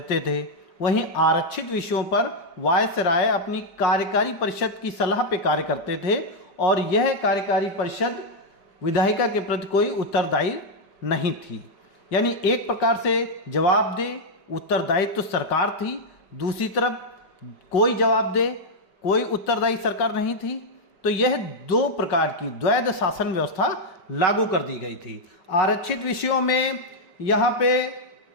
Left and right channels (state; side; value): late; right; 5.2 ms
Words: थे। वहीं आरक्षित विषयों पर वायसराय अपनी कार्यकारी परिषद की सलाह पे कार्य करते थे और यह कार्यकारी परिषद विधायिका के प्रति कोई उत्तरदायी नहीं थी। यानी एक प्रकार से जवाबदेह उत्तरदायित्व सरकार थी, दूसरी तरफ कोई जवाबदेह कोई उत्तरदायी सरकार नहीं थी। तो यह दो प्रकार की द्वैध शासन व्यवस्था लागू कर दी गई थी। आरक्षित विषयों में यहाँ पे